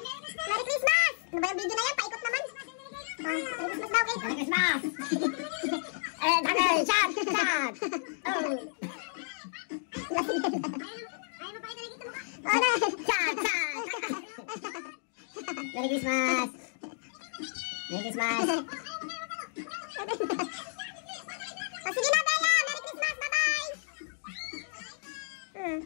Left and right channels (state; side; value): silent; right; digital silence